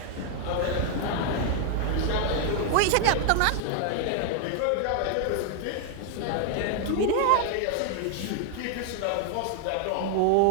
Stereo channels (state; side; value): different; both; correlation 0.00